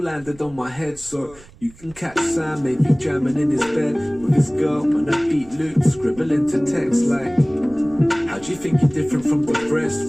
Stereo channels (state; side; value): noise; right; rumble, 23 dB below the sound